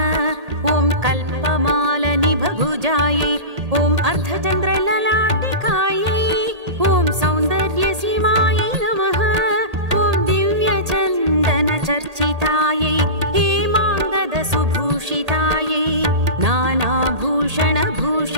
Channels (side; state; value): left; late; 1.8 ms